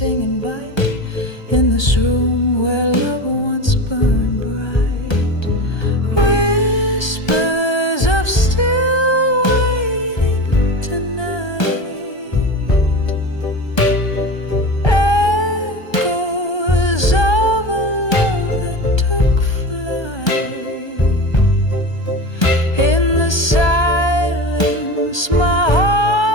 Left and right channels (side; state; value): right; late; 1.3 ms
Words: and bite. In this room where love once burned bright, whispers of still waiting tonight, echoes of a love that took flight. In the silence, my